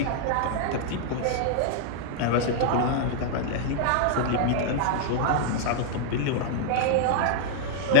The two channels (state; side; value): different; both; correlation -0.01